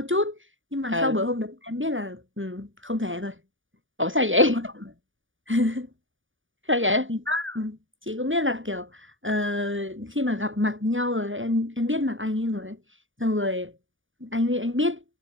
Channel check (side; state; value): left; late; 0.57 ms